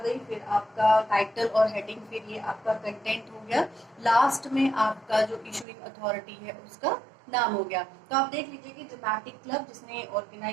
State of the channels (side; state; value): left; drops out; at 5.7 s